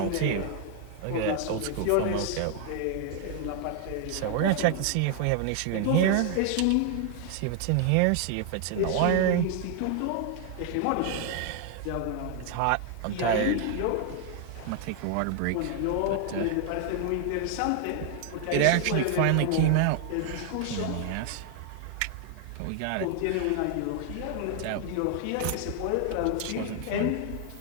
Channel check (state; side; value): different; both; correlation 0.00